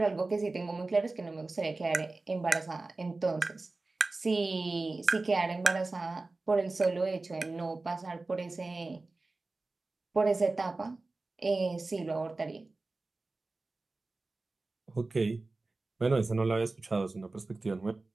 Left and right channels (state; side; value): quieter; left; 3.4 dB